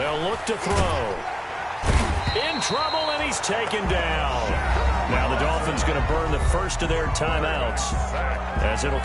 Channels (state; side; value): identical; both; correlation 1.00